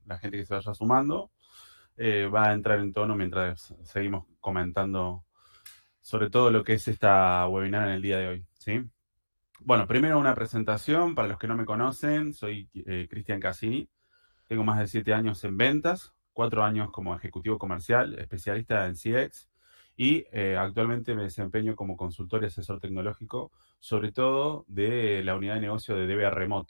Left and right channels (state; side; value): inverted; both; correlation -1.00